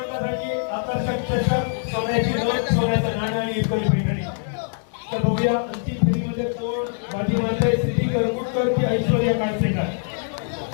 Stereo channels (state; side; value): silent; right; 63 dB below the other